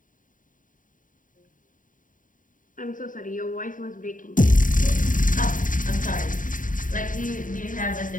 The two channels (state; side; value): late; right; 0.39 ms